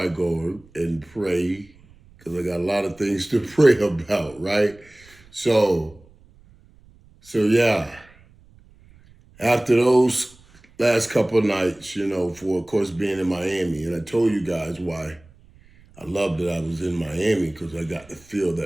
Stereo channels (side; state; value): right; noise; rumble, 27 dB below the sound